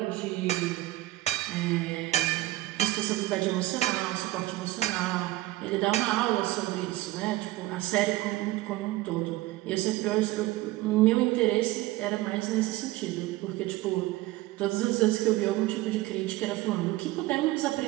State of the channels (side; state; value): left; quieter; 17.7 dB